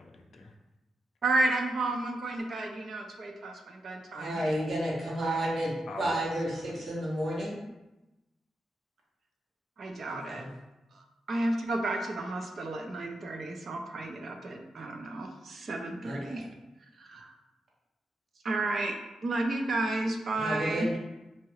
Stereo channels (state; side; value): normal; both; correlation 0.86